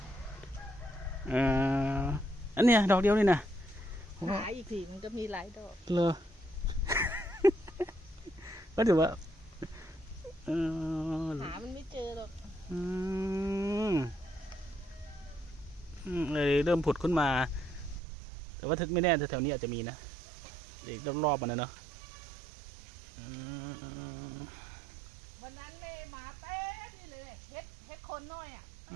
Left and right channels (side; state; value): left; drops out; at 18.0 s